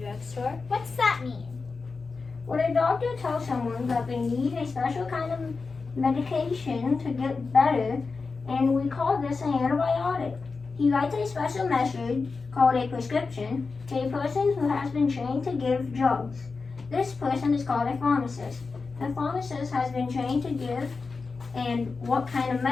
drugstore. What's that mean? When a doctor tells someone that they need a special kind of medication to get better, and we call this an antibiotic. He writes a special message called a prescription to a person who has been trained to give drugs. This person is called a pharmacist. The pharmacist has been trained to give and what kind of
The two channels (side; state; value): right; quieter; 4.4 dB